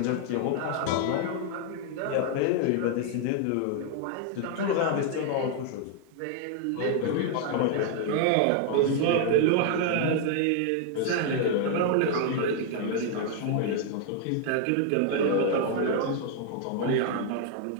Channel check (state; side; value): different; both; correlation 0.00